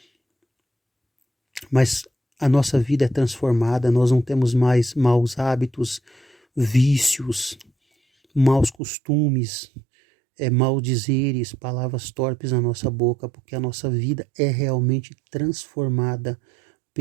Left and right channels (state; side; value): drops out; left; at 8.8 s